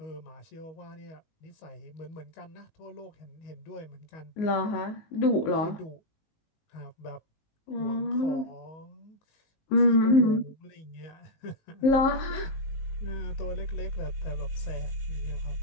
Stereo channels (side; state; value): right; late; 19 ms